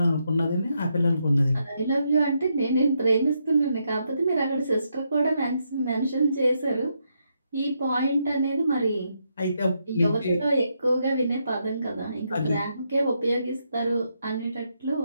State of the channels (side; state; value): both; inverted; correlation -0.80